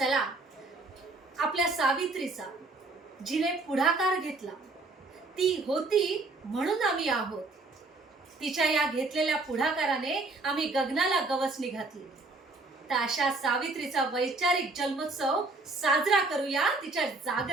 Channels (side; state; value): left; quieter; 3.4 dB